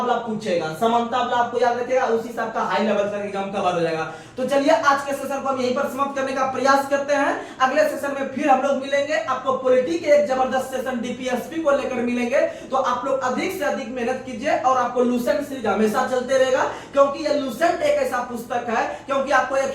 पूछेगा, समानता वाला आपको याद रखिएगा, उसी से आपका हाई लेवल तक एग्जाम कवर हो जाएगा। तो चलिए आज के सेशन को हम यहीं पर समाप्त करने का प्रयास करते हैं। अगले सेशन में फिर हम लोग मिलेंगे, आपको पॉलिटी के एक जबरदस्त सेशन डीपीएसपी को लेकर मिलेंगे। तो आप लोग अधिक से अधिक मेहनत कीजिए और आपको लूसेंट सीरीज हमेशा चलते रहेगा, क्योंकि ये लूसेंट एक ऐसा पुस्तक है, क्योंकि आपको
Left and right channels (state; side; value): identical; both; correlation 1.00